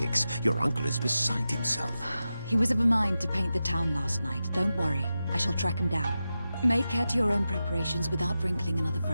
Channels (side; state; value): both; inverted; correlation -0.92